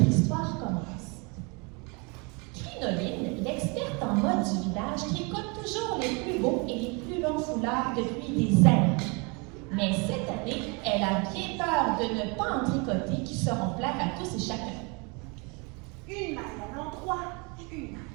histoire commence. Crinoline, l'experte en mode du village, tricote toujours les plus beaux et les plus longs foulards depuis des années. Mais cette année, elle a bien peur de ne pas en tricoter qui seront plaire à tous et chacun. Une maille à l'endroit, une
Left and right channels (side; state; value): left; quieter; 30.7 dB